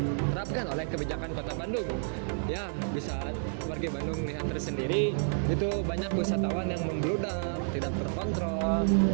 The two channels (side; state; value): left; silent; digital silence